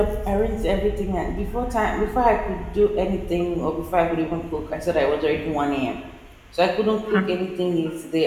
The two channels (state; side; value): identical; both; correlation 1.00